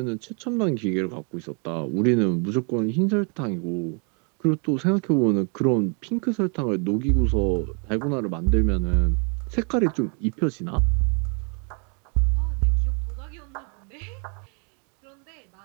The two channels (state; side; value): quieter; left; 37.8 dB